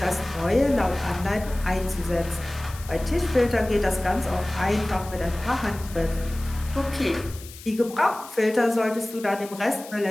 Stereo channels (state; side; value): noise; left; hiss, 17 dB below the sound